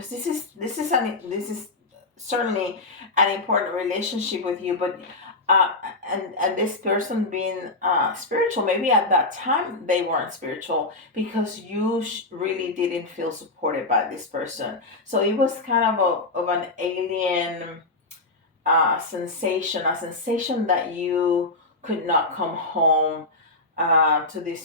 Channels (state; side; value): quieter; right; 3.0 dB